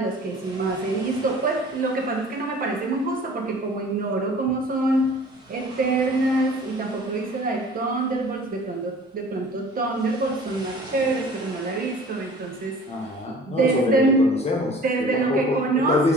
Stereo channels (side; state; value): both; normal; correlation 0.47